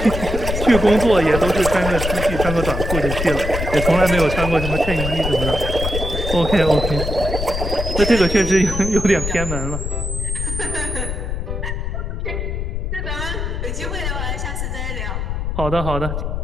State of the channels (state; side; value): noise; left; rumble, 3 dB below the sound